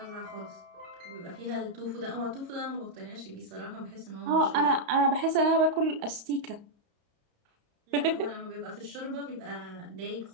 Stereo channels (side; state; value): left; late; 33 ms